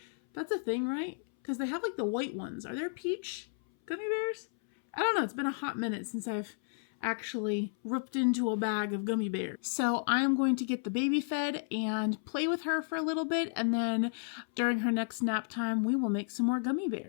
That's a thing, right? Because they have like the white ones. Are there peach gummy bears? I don't know. It's been a hot minute since I've actually ripped into a bag of gummy bears. So I am going to get the baby fed and play with her for a little bit. And then during her next nap time, we will make some more gummy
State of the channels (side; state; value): right; silent; 56 dB below the other